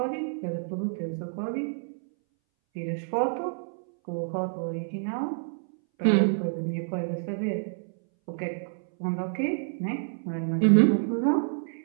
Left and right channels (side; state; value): left; silent; 59 dB below the other